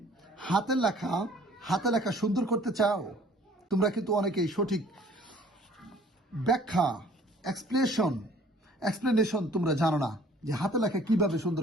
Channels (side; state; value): both; normal; correlation 0.54